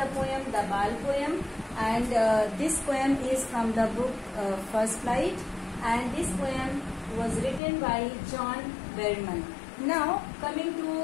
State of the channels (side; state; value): right; drops out; at 7.6 s